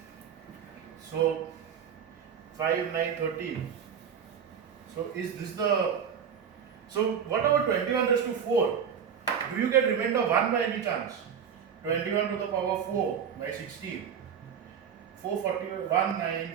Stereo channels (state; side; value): quieter; left; 7.6 dB